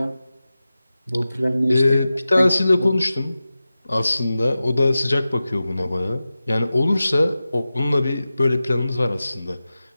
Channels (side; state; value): both; inverted; correlation -0.95